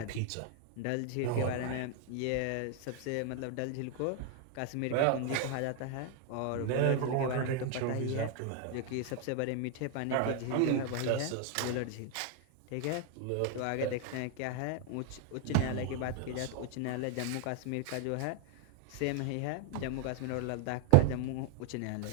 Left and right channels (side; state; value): both; different; correlation 0.00